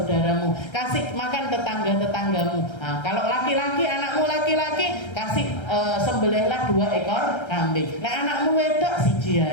kasih makan tetangga-tetanggamu. Nah, kalau laki-laki, anakmu laki-laki, kasih sembelihlah 2 ekor kambing. Nah, anakmu wedok siji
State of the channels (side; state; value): right; late; 1.3 ms